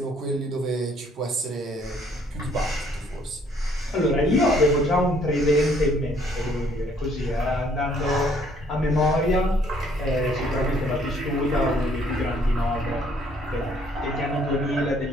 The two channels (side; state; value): both; normal; correlation 0.63